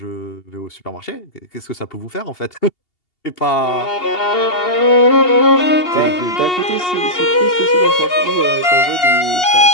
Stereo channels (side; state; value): right; late; 2.8 ms